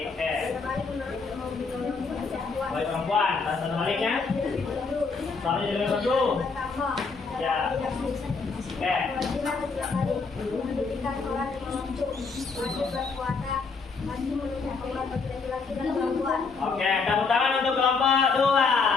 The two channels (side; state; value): right; quieter; 4.6 dB